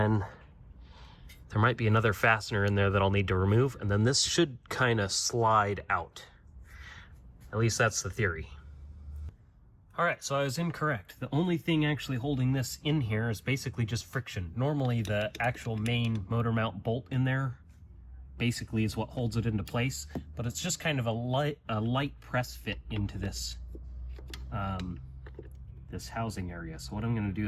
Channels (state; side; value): identical; both; correlation 1.00